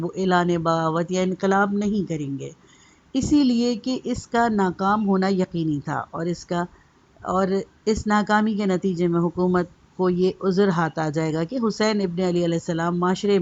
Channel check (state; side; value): identical; both; correlation 1.00